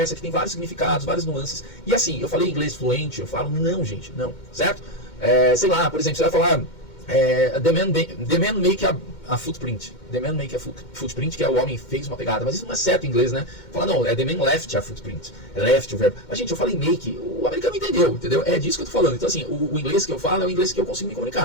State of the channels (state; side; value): late; right; 2.1 ms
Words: que tem vários significados, várias nuances. E assim, eu falei inglês fluente, eu falo, não, gente, não, certo? Sei lá, por exemplo, você vai falar the man make a footprint. The man make a footprint, que é o homem fez uma pegada. Mas isso não é certo em inglês, né? Fala, não, the man left a footprint. Left o verbo. Mas, gente, eu falei make, o americano entendeu? É disso que eu tô falando. Então, assim, o inglês que eu falo é o inglês que eu consigo me